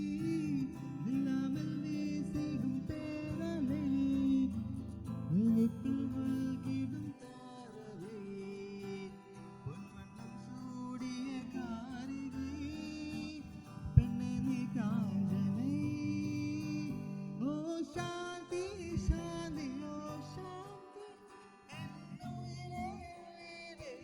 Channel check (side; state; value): both; identical; correlation 1.00